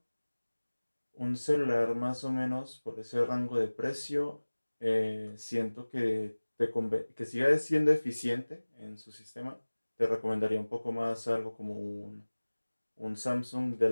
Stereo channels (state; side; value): inverted; both; correlation -1.00